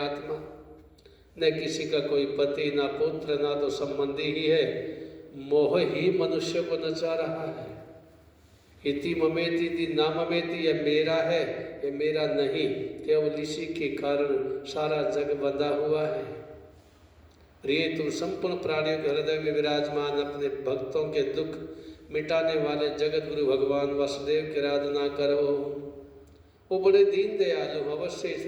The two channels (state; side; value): identical; both; correlation 1.00